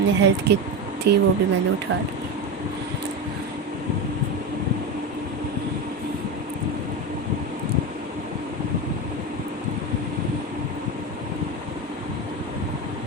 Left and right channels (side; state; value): both; normal; correlation 0.18